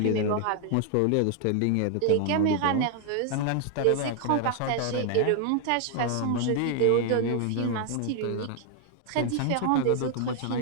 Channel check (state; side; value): different; both; correlation 0.00